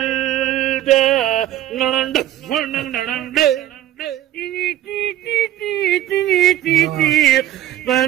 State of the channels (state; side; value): quieter; left; 13.0 dB